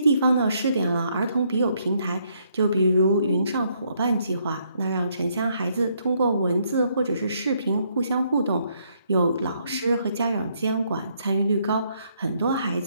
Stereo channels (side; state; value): both; inverted; correlation -0.72